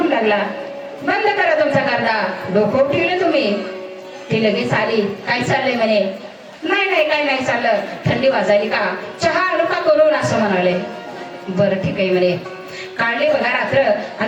लागला बंद करा तुमचा गर्दा, डोकं उठवले तुम्ही. ती लगेच आली, काय चाललंय म्हणे. नाही नाही काय नाही चाललं, थंडी वाजायली का, चहा आणू का करून, असं म्हणाले. बरं ठीक आहे म्हणे. काढले बघा रात्र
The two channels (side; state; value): both; identical; correlation 1.00